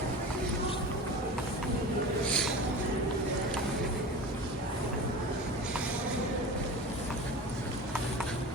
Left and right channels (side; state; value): both; normal; correlation 0.33